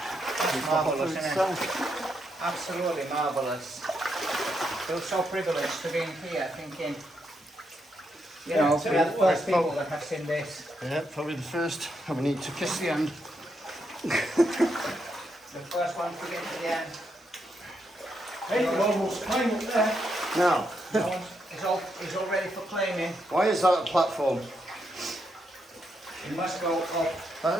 Marvellous, isn't it? Absolutely marvellous. Feel so privileged to be in here thinking, you know, we are the first people that have seen this. Yeah, probably the first. And we need to kiss the end. The first one to get to the end. Hey, you almost climbed up there. Now, It's all ready for claiming. why is that a platform? It must go up.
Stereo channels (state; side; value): normal; both; correlation 0.80